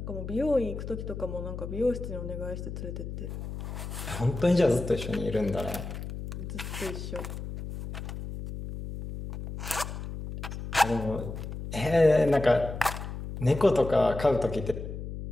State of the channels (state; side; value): noise; left; hum, 7 dB below the sound